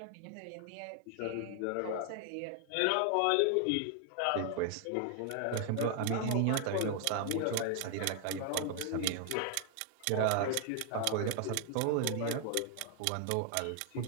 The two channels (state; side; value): different; both; correlation 0.00